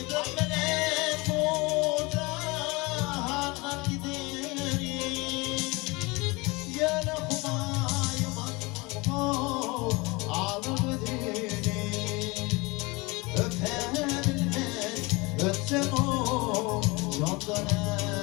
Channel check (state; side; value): quieter; right; 25.1 dB